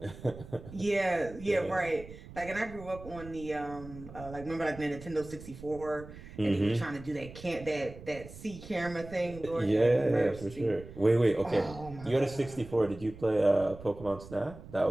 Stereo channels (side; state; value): right; noise; rumble, 15 dB below the sound